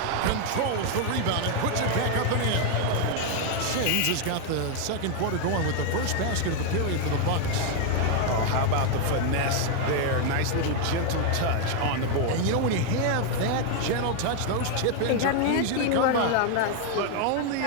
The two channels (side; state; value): both; different; correlation 0.00